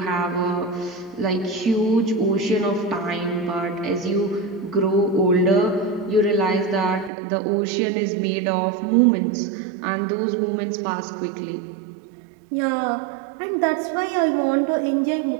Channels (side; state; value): left; drops out; at 7.1 s